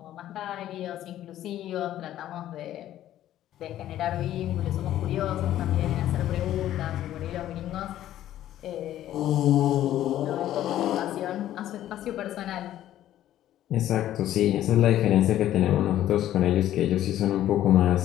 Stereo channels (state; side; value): quieter; right; 12.7 dB